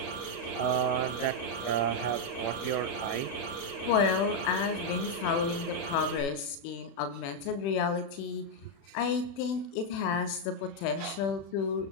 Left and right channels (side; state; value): right; late; 36 ms